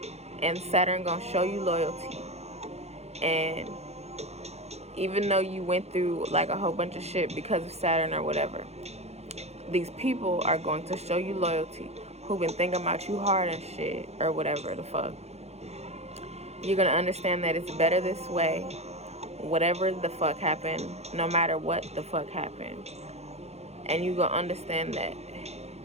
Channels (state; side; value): late; left; 0.31 ms